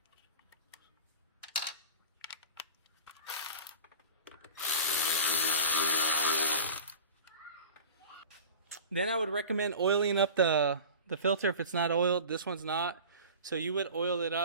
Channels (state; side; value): inverted; both; correlation -0.37